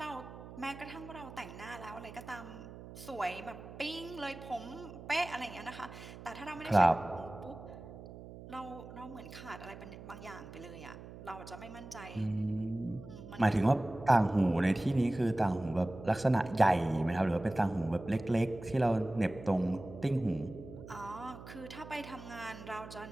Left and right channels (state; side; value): noise; right; hum, 14 dB below the sound